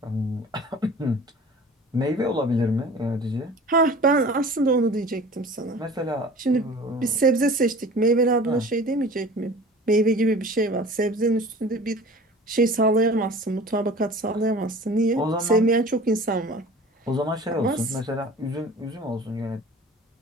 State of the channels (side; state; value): both; normal; correlation 0.42